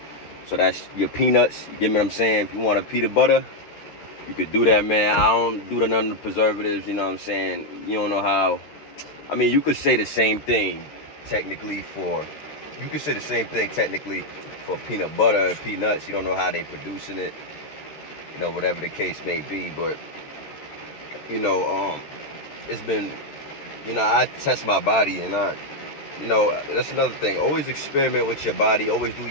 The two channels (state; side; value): late; right; 14 ms